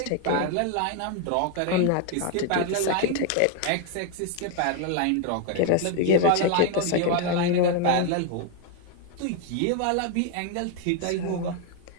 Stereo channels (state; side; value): different; both; correlation 0.00